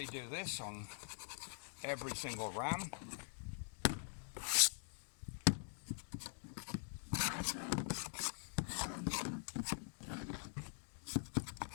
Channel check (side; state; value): right; silent; digital silence